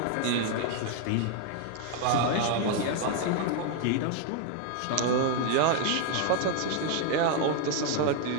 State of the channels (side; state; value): both; different; correlation 0.00